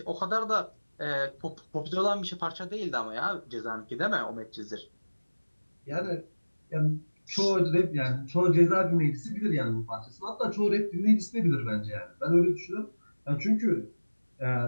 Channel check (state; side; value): inverted; both; correlation -1.00